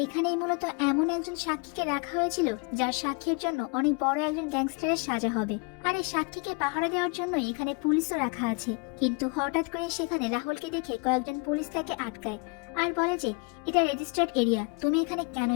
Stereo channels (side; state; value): right; quieter; 32.7 dB